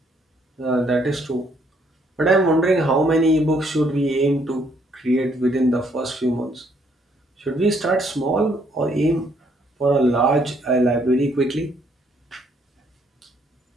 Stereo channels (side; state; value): both; normal; correlation 0.68